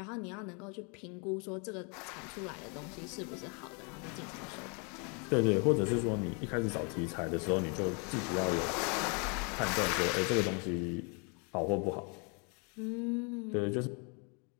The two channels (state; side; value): quieter; right; 35.0 dB